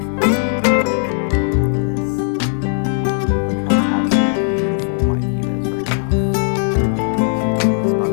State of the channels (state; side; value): silent; right; digital silence